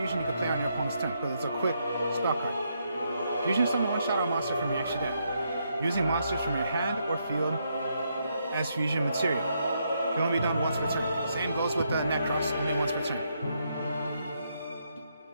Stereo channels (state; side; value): inverted; both; correlation -0.78